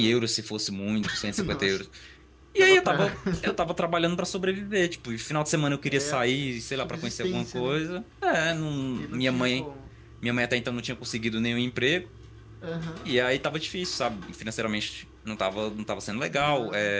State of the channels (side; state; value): both; identical; correlation 1.00